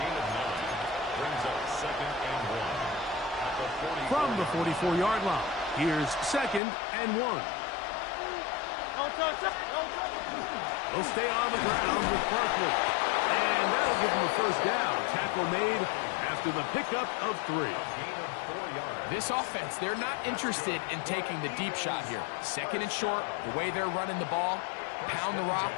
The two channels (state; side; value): drops out; right; at 6.6 s